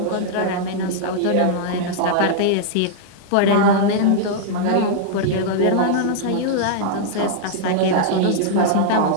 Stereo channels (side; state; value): both; different; correlation -0.01